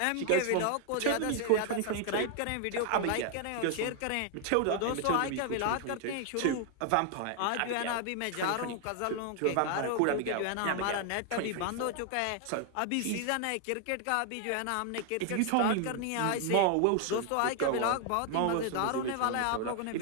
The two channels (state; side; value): different; both; correlation 0.00